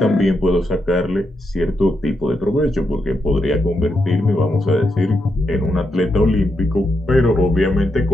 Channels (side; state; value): both; normal; correlation 0.83